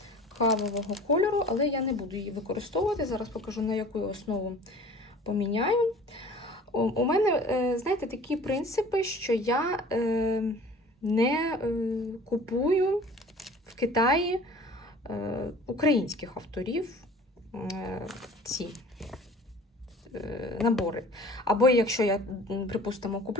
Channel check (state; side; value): normal; both; correlation 0.46